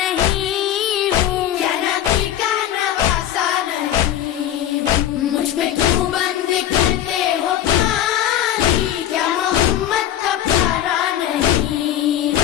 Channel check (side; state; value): right; quieter; 11.5 dB